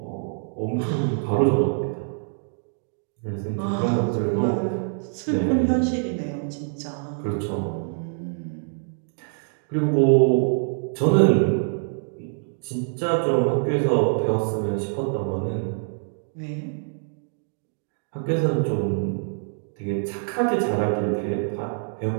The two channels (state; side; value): silent; left; 59 dB below the other